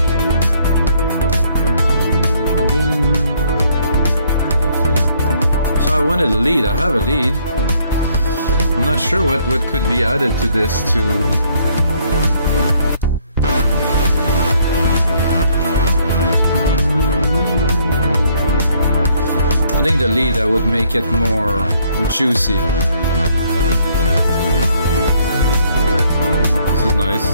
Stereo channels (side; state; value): both; inverted; correlation -0.66